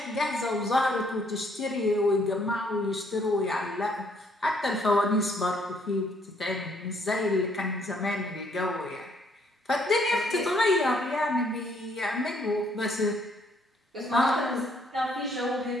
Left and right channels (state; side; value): normal; both; correlation 0.67